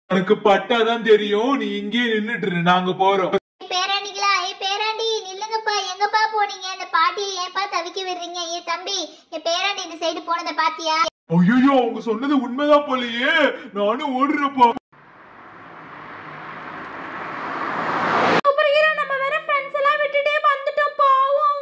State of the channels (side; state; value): both; identical; correlation 1.00